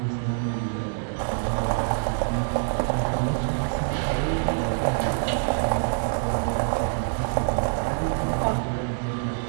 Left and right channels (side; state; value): left; silent; digital silence